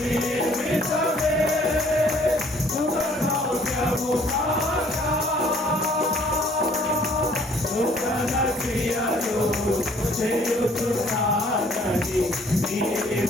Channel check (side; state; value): both; normal; correlation 0.59